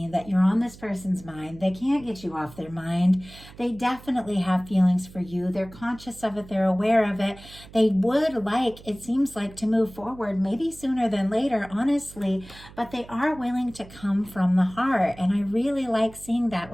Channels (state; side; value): noise; right; hum, 20 dB below the sound